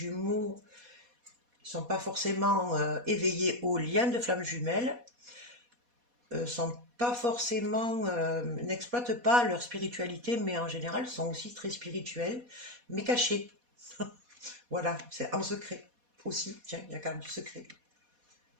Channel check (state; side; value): late; left; 4.2 ms